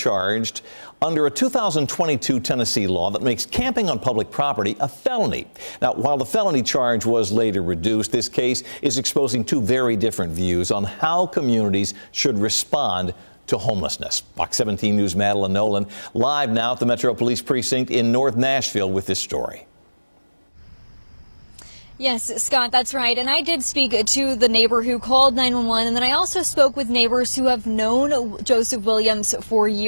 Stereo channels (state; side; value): inverted; both; correlation -1.00